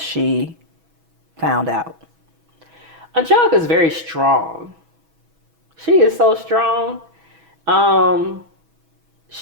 found out? Angelica's very strong. She is so strong.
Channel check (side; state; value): left; late; 6.2 ms